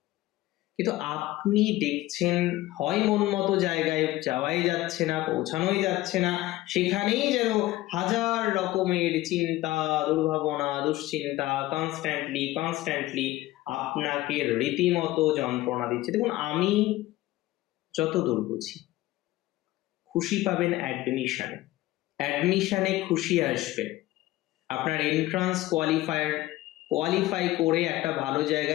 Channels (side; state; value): right; quieter; 17.1 dB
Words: কিন্তু আপনি দেখছেন হয় মন মতো জায়গায় যাওয়াই যাচ্ছে না, পৌঁছানোই যাচ্ছে না, সেখানেই যেন হাজার রকমের চিন্তা, দুর্ভাবনা, দুশ্চিন্তা কনস্ট্যান্টলি আপনাকে রীতিমতো যন্ত্রণা দিচ্ছে। দেখুন, আমি যতদূর বুঝি, খুশি পাবেন অ্যাডমিশনে খুশি আসবে। আপনার এন্ট্রান্স কোয়ালিফাই করে একটা ভালো